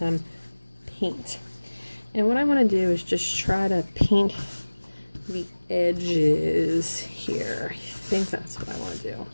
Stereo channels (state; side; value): inverted; both; correlation -1.00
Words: paint. And what I want to do is just try to paint the edges here. I think that's what I want to do.